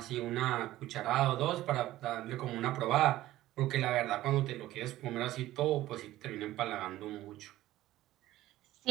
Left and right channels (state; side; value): quieter; left; 15.3 dB